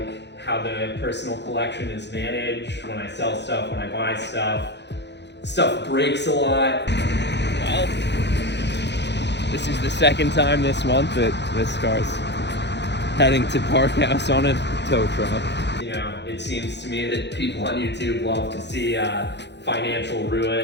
how the personal collection is managed, when I sell stuff, when I buy stuff. Stuff breaks a lot. Well, this is the second time this month that this car's heading to Park House on a tow truck. It seems to me that people on YouTube love to see financial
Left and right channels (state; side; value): late; right; 0.50 ms